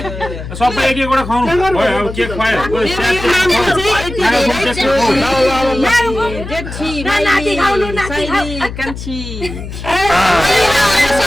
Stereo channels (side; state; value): left; noise; hum, 9 dB below the sound